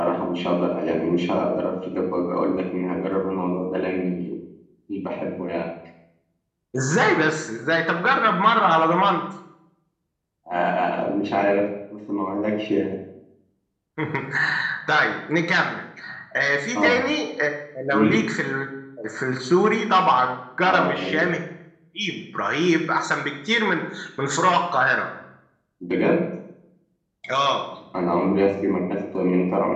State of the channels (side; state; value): both; identical; correlation 1.00